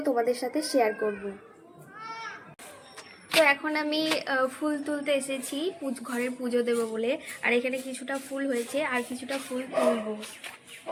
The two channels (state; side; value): identical; both; correlation 1.00